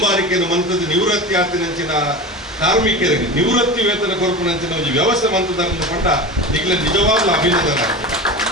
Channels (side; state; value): both; normal; correlation 0.29